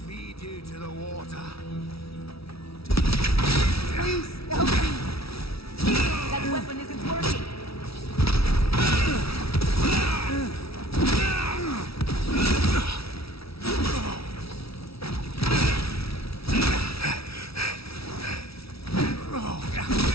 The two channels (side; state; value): right; late; 0.76 ms